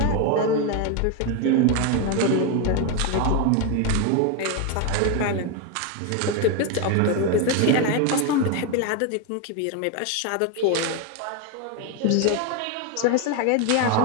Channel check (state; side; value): different; both; correlation 0.01